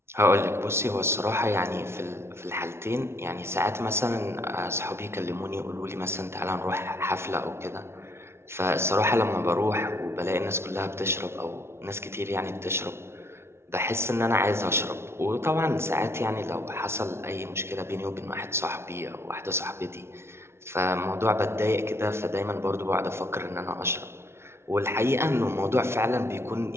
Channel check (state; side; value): late; left; 0.12 ms